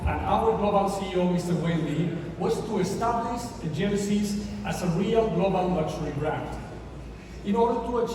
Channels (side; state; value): both; identical; correlation 1.00